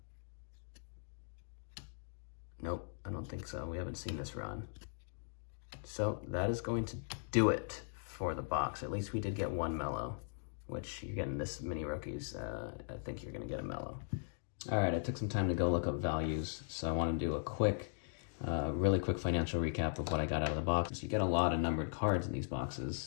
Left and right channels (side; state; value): right; silent; digital silence